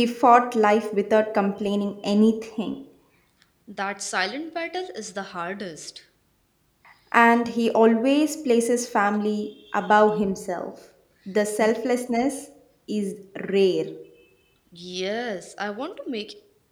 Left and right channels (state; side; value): identical; both; correlation 1.00